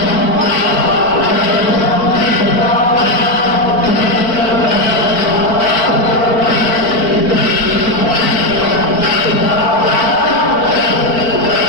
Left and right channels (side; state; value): right; late; 4.5 ms